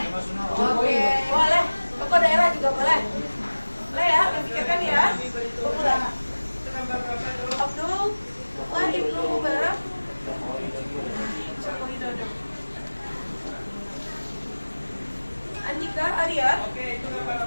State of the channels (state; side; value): inverted; both; correlation -1.00